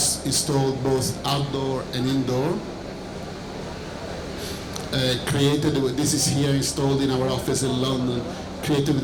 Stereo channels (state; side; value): identical; both; correlation 1.00